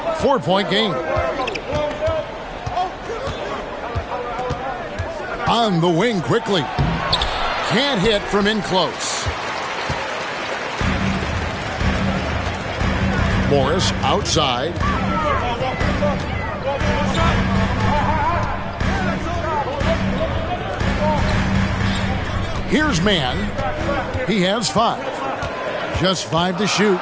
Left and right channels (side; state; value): both; identical; correlation 1.00